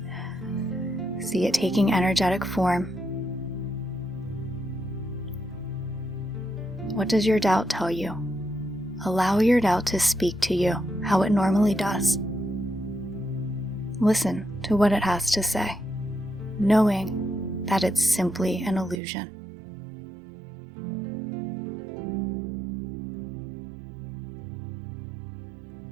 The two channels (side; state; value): left; drops out; at 19.0 s